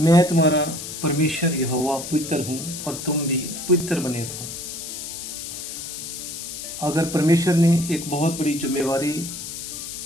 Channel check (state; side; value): noise; left; hiss, 8 dB below the sound